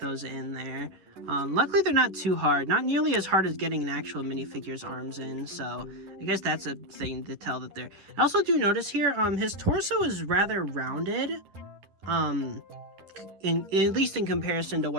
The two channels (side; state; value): left; late; 11 ms